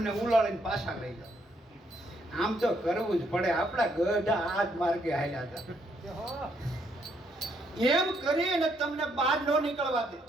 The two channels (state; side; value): normal; both; correlation 0.73